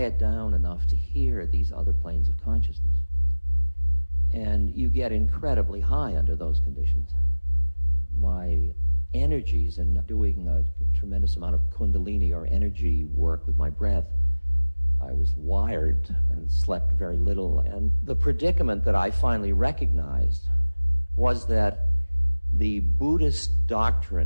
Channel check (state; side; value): inverted; both; correlation -1.00